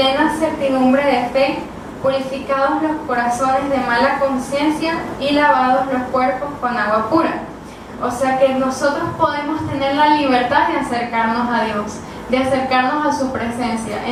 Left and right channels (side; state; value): both; identical; correlation 1.00